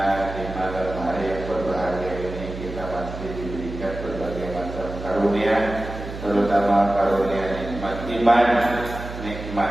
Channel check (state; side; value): noise; right; hum, 10 dB below the sound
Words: di malam hari yang berbahagia ini kita masih diberikan berbagai macam karunia, terutama karunia nikmat iman,